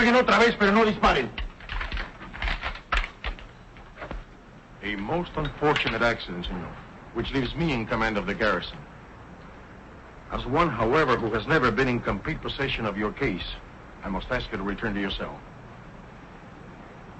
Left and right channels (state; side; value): identical; both; correlation 1.00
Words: otra vez, pero no disparen. A most unfortunate accident, senor, which leaves me in command of the garrison. As one, however, who has never been in complete possession of your case, I must ask you to return to your cell.